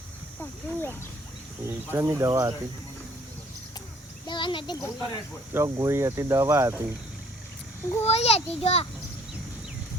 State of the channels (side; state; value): both; normal; correlation 0.59